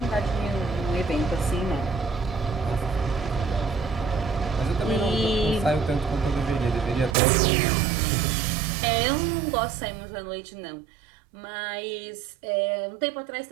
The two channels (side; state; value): left; drops out; at 7.2 s